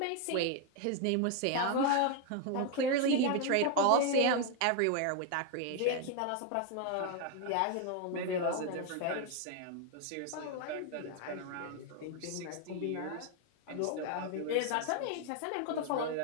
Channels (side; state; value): both; different; correlation 0.01